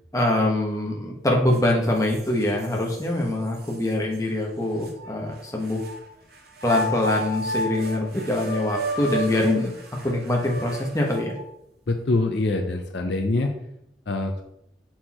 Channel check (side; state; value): both; normal; correlation 0.57